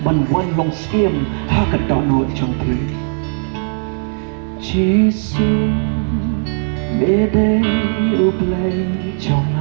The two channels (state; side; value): silent; left; 57 dB below the other